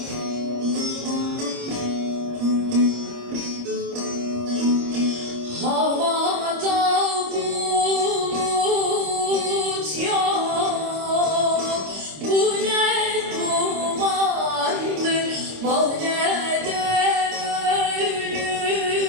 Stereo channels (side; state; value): left; late; 26 ms